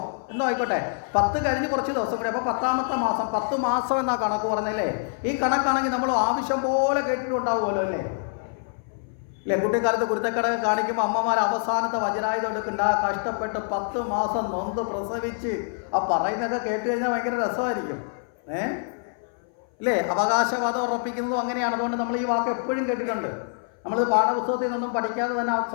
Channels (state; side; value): silent; right; 59 dB below the other